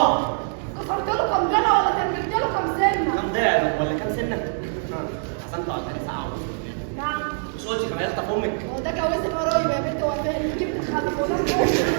يا اسطى في امك. هو ده جواز القرايب يا بنت وفاء اللي جبت تخلف ولا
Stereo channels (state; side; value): silent; left; digital silence